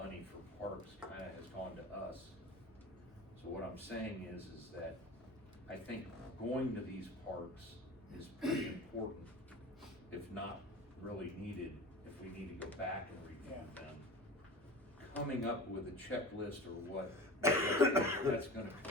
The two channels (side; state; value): both; normal; correlation 0.34